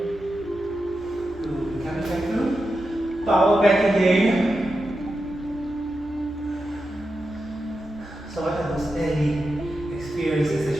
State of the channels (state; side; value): noise; right; hum, 22 dB below the sound